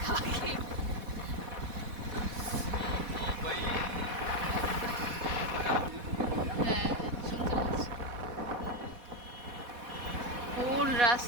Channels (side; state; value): left; late; 4.1 ms